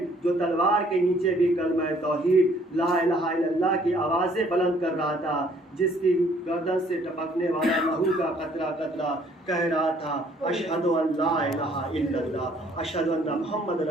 جو تلوار کے نیچے بھی کلمہ توحید لا الہ الا اللہ کی آوازیں بلند کر رہا تھا، جس کی گردن سے ٹپکنے والا لہو کا قطرہ قطرہ کہہ رہا تھا اشہد ان لا الہ الا اللہ، اشہد ان محمد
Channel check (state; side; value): normal; both; correlation 0.61